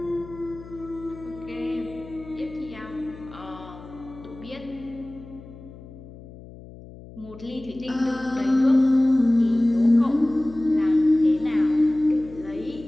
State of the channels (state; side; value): noise; left; hum, 17 dB below the sound